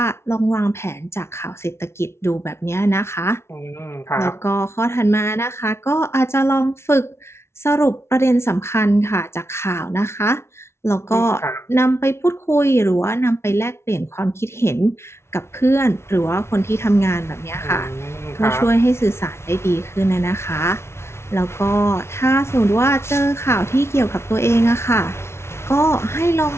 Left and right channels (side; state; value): right; late; 0.13 ms